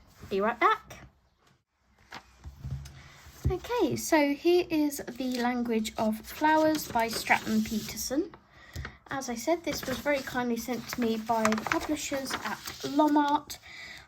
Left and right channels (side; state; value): both; identical; correlation 1.00